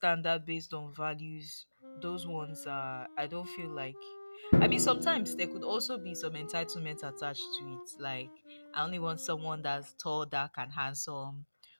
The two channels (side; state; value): both; inverted; correlation -1.00